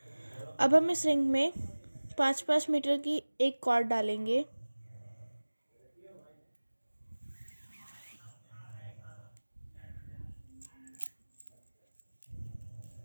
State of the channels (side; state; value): both; inverted; correlation -1.00